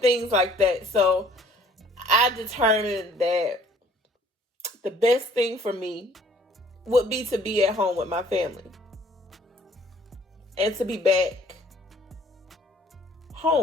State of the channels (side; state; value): both; normal; correlation 0.57